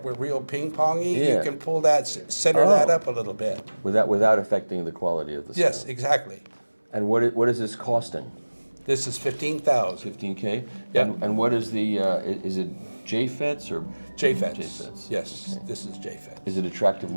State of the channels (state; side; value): inverted; both; correlation -1.00